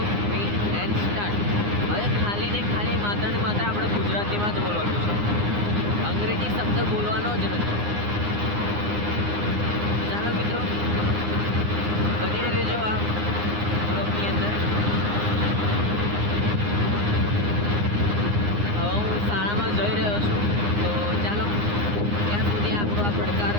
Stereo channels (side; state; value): left; late; 9.7 ms